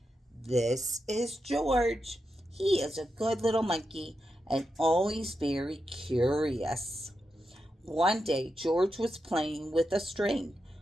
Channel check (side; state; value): both; normal; correlation 0.87